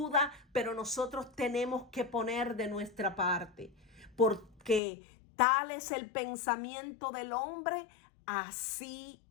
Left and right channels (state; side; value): drops out; right; at 4.8 s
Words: pero nosotros tenemos que poner de nuestra parte, porque tal es el pensamiento del hombre, así